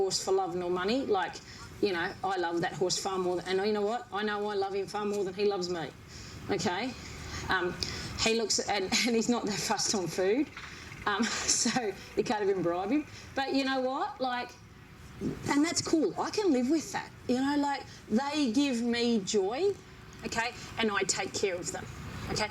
for love nor money. Like, you know, I love that horse far more and you know what? I know I love him far more than he loves me. Okay? He looks, and he's not that fussed on food. So you can't even bribe him. But you know what? Like, and that's cool. I can live with that. You know, like, they give me joy, okay, and I take care of them, okay.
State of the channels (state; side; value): identical; both; correlation 1.00